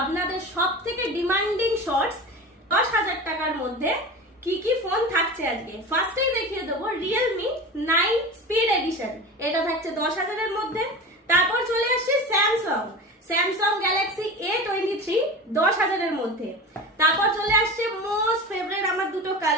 আপনাদের সবথেকে ডিমান্ডিং শর্টস 10,000 টাকার মধ্যে কি কি ফোন থাকছে আজকে। ফার্স্টেই দেখিয়ে দেবো Realme 9 স্পিড এডিশন, এটা থাকছে 10,000 এর মধ্যে। তারপর চলে আসছে স্যামসাং গ্যালাক্সি A23 10,000 এর মধ্যে। তারপর চলে আসছে মোস্ট ফেভারিট আমার দুটো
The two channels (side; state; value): both; normal; correlation 0.31